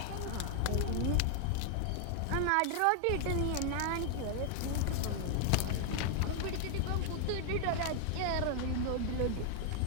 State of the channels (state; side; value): different; both; correlation 0.00